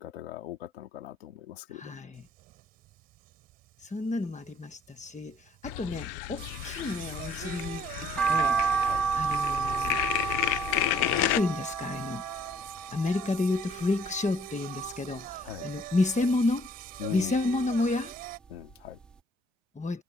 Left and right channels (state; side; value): normal; both; correlation 0.61